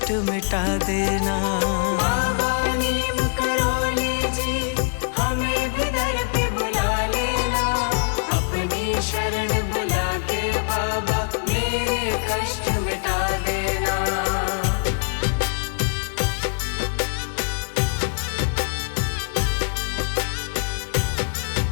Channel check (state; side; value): silent; right; digital silence